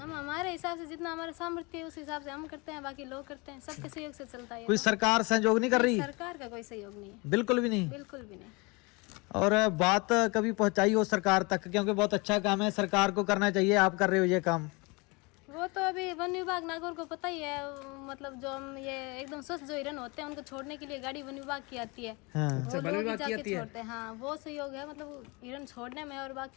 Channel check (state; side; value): quieter; right; 27.5 dB